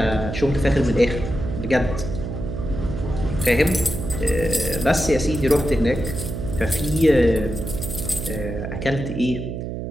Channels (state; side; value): noise; right; hum, 6 dB below the sound